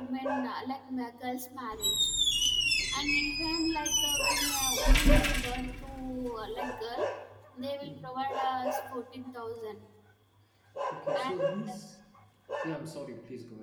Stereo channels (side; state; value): both; identical; correlation 1.00